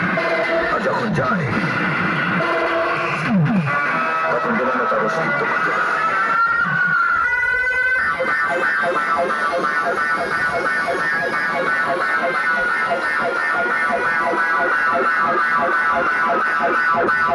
আর যখন যায় তখন যেন তার অস্তিত্ব খুঁজে পায়।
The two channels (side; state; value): both; identical; correlation 1.00